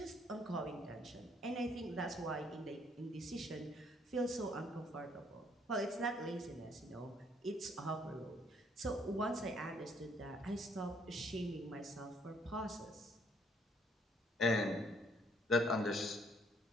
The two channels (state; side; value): normal; both; correlation 0.65